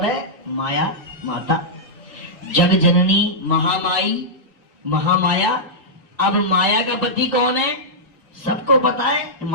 है माया, माता, जग जननी, महामाई, महामाया। अब माया का पति कौन है, सबको पता है।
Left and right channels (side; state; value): both; normal; correlation -0.11